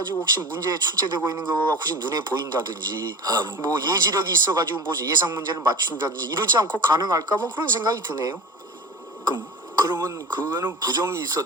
혹시 문제에 출제되고 있는 거가 혹시 눈에 보인다든지 뭐 예지력이 있어가지고 뭐 예상 문제를 맞춘다든지 이러지 않고 가능할까 뭐 그런 생각이 드네요. 그러면 그거는 부정이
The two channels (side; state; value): both; normal; correlation 0.34